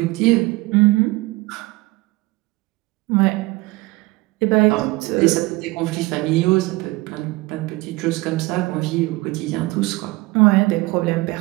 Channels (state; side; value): quieter; left; 21.6 dB